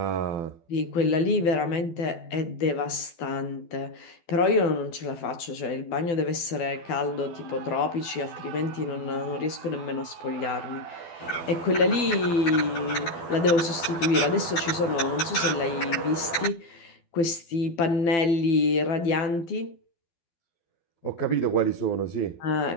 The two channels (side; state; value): right; late; 12 ms